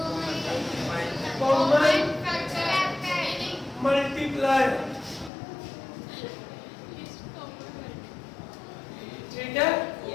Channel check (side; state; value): right; drops out; at 5.3 s